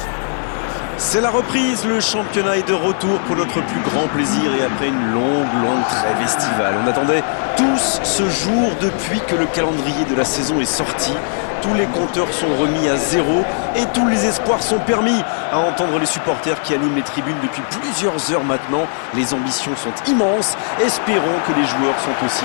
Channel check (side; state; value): right; silent; 61 dB below the other